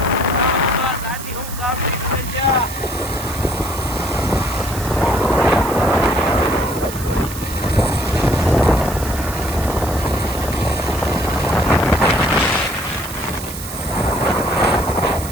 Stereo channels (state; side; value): noise; right; hiss, 11 dB below the sound